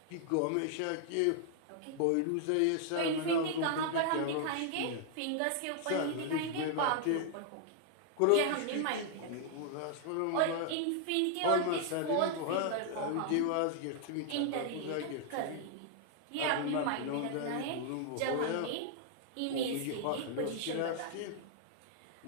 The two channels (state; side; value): different; both; correlation 0.00